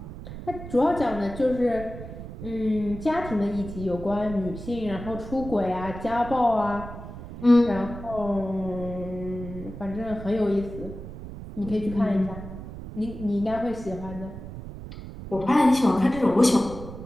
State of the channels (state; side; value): noise; right; rumble, 11 dB below the sound